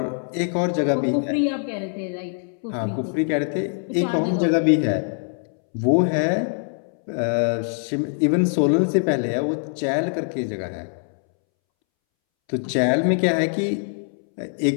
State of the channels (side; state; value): right; silent; 63 dB below the other